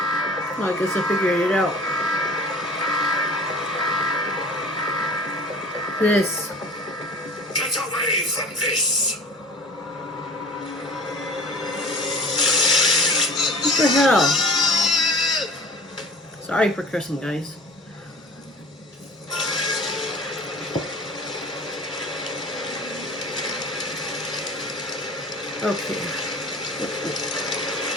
Well, I guess I figured it out. This. Get away from this! What the hell? Sorry for cursing, guys. Okay.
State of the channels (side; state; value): both; normal; correlation 0.42